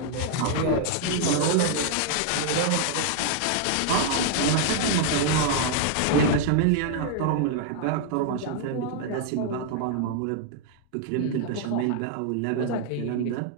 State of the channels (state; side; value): different; both; correlation 0.00